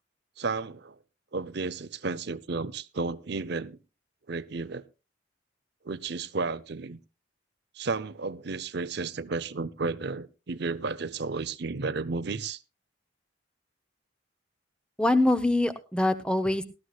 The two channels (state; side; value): normal; both; correlation 0.55